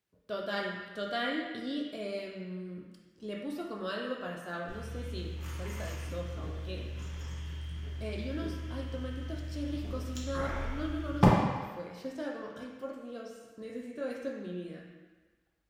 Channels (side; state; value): both; identical; correlation 1.00